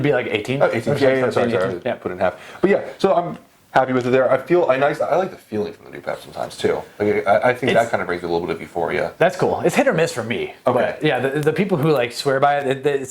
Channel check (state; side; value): identical; both; correlation 1.00